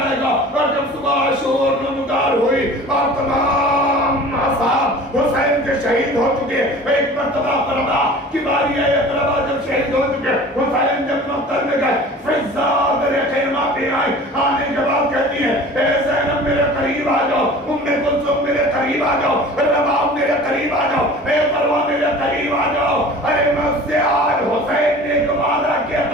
گا. اور جب صبح شور نمودار ہوئی اور تمام اصحاب حسین کے شہید ہو چکے, ایک مرتبہ فرما کی باری ہے, اقربا جب شہید ہو چکے, حسین جب مقتل میں گئے, فضا میرے خیمہ پہ آئی. آنے کے بعد کہتی ہے اے زینب میرے قریب آ جاؤ, ام کلثوم میرے قریب آ جاؤ, رباب میرے قریب آ جاؤ, اے مروہ میرے قریب آ جاؤ. ارے میں اس سے آج حسین نے ایک وعدہ کیا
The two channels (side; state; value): both; normal; correlation 0.42